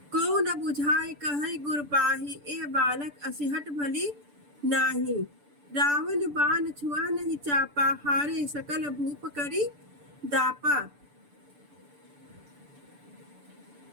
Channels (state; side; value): late; left; 6.9 ms